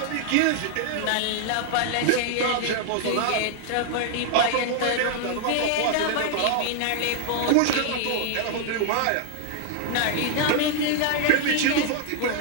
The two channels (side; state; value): both; different; correlation 0.00